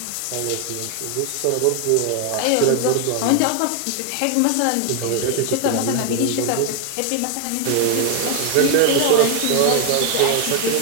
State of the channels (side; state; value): both; different; correlation 0.01